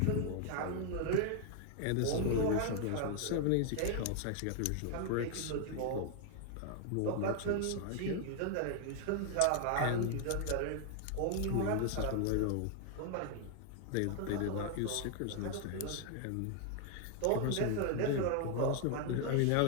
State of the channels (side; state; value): both; different; correlation 0.00